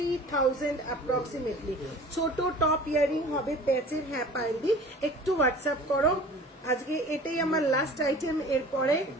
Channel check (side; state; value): both; normal; correlation 0.44